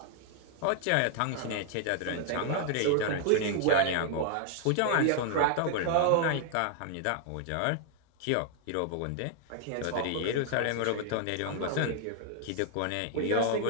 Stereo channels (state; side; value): different; both; correlation -0.01